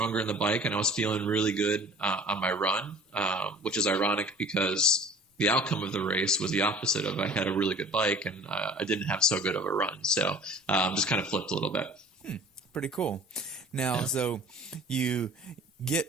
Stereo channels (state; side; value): normal; both; correlation 0.46